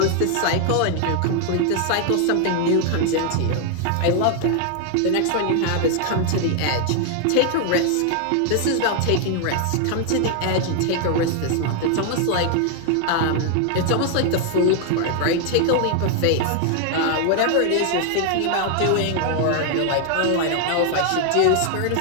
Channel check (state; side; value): different; both; correlation 0.00